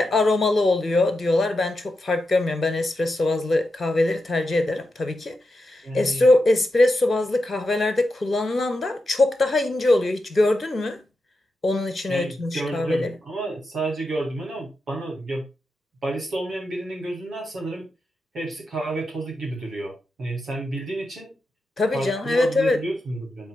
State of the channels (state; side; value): normal; both; correlation 0.88